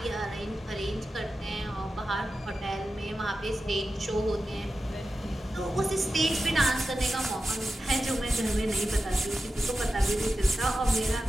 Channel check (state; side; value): normal; both; correlation 0.93